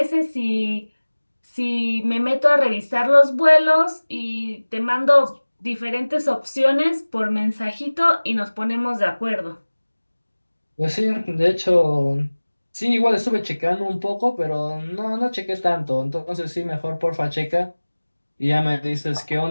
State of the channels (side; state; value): both; inverted; correlation -1.00